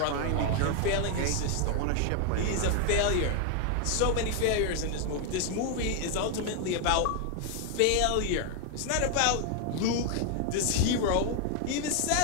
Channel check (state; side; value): different; both; correlation 0.00